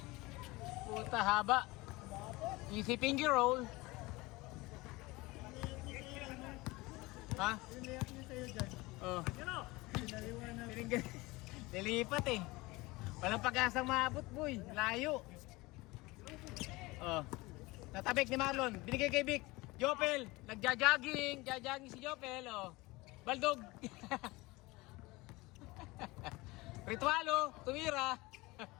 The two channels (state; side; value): quieter; right; 22.1 dB